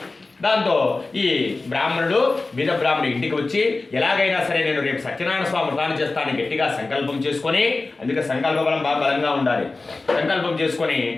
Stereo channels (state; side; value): quieter; right; 3.5 dB